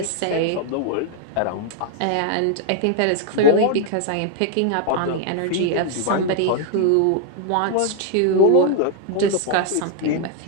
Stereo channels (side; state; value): both; different; correlation 0.00